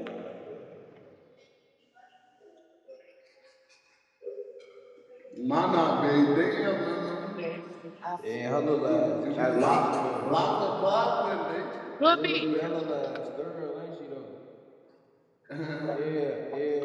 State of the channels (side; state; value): both; identical; correlation 1.00